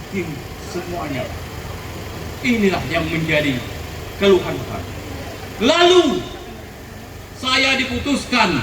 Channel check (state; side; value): identical; both; correlation 1.00